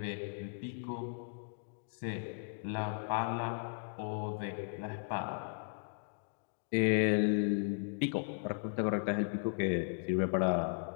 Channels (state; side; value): silent; right; digital silence